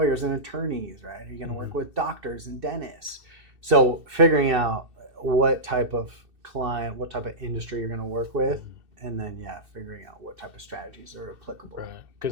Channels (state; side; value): late; left; 2.6 ms